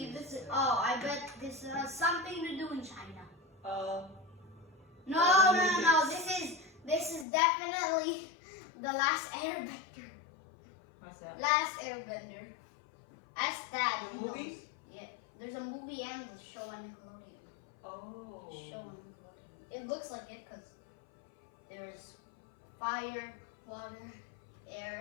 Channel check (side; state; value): right; drops out; at 7.2 s